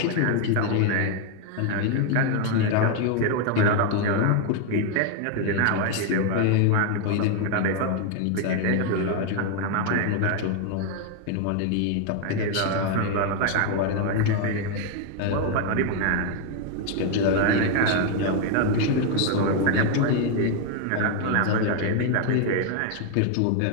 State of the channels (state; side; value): different; both; correlation 0.01